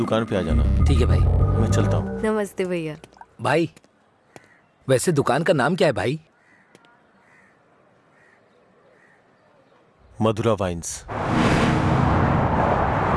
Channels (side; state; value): both; identical; correlation 1.00